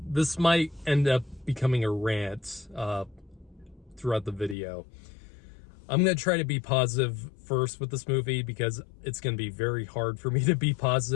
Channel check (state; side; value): drops out; right; at 4.5 s